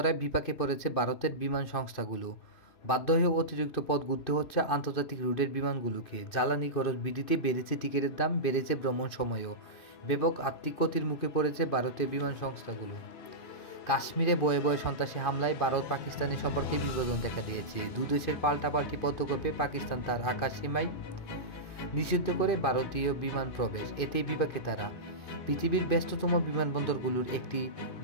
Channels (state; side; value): late; right; 2.5 ms